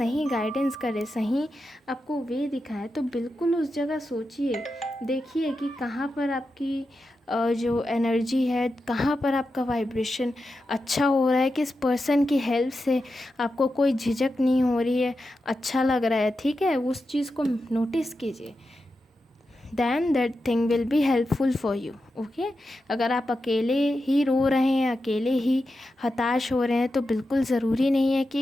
गाइडेंस करे, सही आपको वे दिखाए। तो बिल्कुल उस जगह सोचिए, देखिए कि कहाँ पर आपकी जो एनर्जी है, कहाँ पर आपका वाइब्रेशन अच्छा हो रहा है, किस पर्सन की हेल्प से आपको कोई झिझक नहीं हो रही है, अच्छा लग रहा है, ठीक है। उस चीज़ को नोटिस कीजिए, then that thing will be helpful for you, okay। अगर आप अकेले ही रो रहे हैं, अकेले ही हताश हो रहे हैं, तो बिल्कुल ज़रूरी नहीं है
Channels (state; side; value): normal; both; correlation 0.89